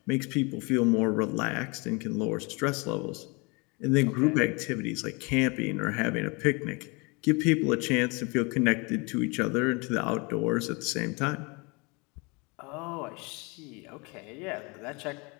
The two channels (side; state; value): right; quieter; 28.8 dB